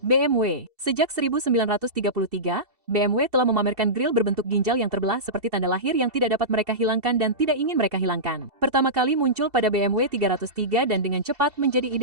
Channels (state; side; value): late; left; 2.7 ms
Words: BMW. Sejak 1933, BMW telah memamerkan grill berbentuk ginjal yang terbelah seperti tanda lahir yang tidak dapat mereka hilangkan dan tidak ingin mereka hilangkan. Pertama kali muncul pada BMW 303 dan dengan cepat menjadi